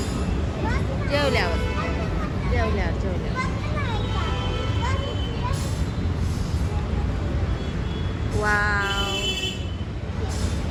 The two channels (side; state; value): both; identical; correlation 1.00